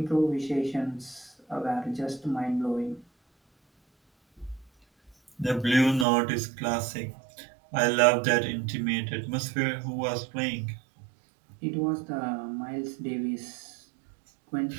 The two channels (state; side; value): drops out; left; at 6.1 s